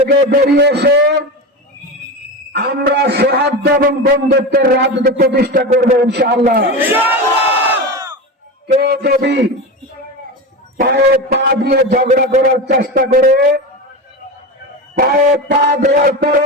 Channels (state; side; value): normal; both; correlation 0.22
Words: বেরিয়ে এসে আমরা সৌহার্দ্য এবং বন্ধুত্বের রাজনীতি প্রতিষ্ঠা করবো ইনশাআল্লাহ। কেউ যদি পায়ে পা দিয়ে ঝগড়া করার চেষ্টা করে, পায়ে পা দেওয়ার